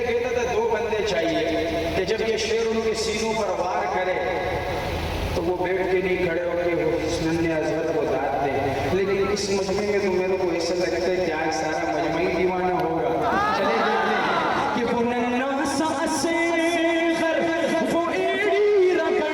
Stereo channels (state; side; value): identical; both; correlation 1.00